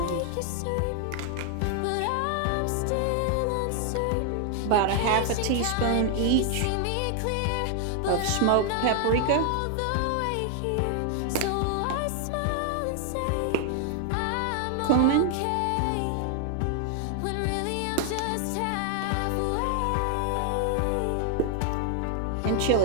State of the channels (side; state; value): both; different; correlation 0.00